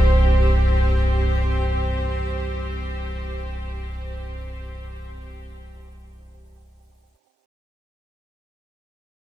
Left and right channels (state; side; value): normal; both; correlation 0.89